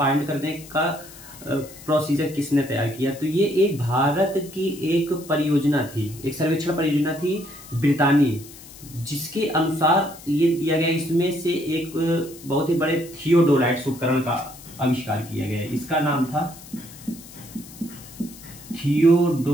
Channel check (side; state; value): left; noise; hiss, 18 dB below the sound